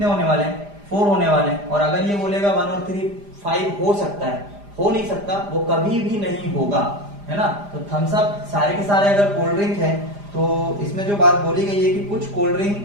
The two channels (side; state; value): left; late; 5.0 ms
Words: होने वाले हैं, 4 होने वाले हैं। और अगर ये बोलेगा 1 और 3 5 हो सकता है, हो नहीं सकता, वो कभी भी नहीं होगा, है ना। तो थम्स अप सारे के सारे अगर कोल्ड ड्रिंक है तो इसमें जो बात बोली गई है कि कुछ कोल्ड ड्रिंक